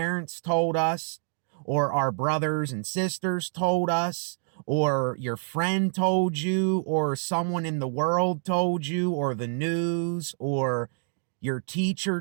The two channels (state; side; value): silent; left; digital silence